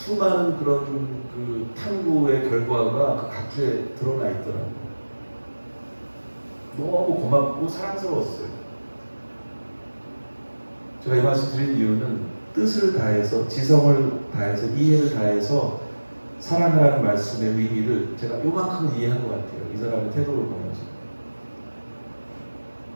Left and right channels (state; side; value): inverted; both; correlation -1.00